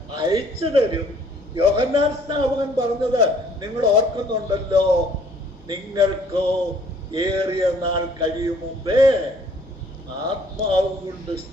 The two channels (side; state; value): left; noise; hum, 26 dB below the sound